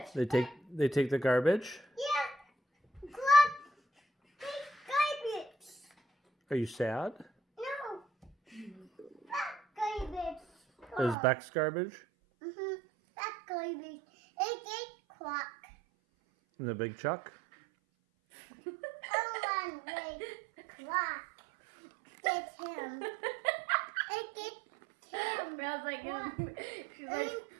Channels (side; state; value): left; drops out; at 11.2 s